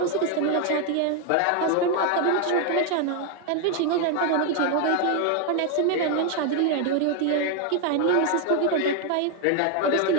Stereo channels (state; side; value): different; both; correlation 0.01